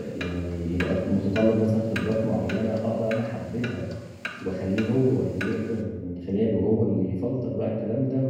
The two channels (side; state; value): both; identical; correlation 1.00